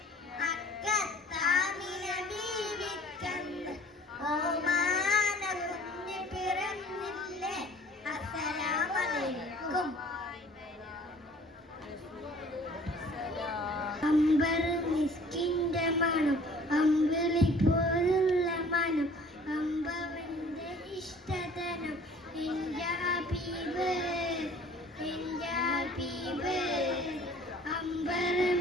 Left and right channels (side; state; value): both; normal; correlation 0.51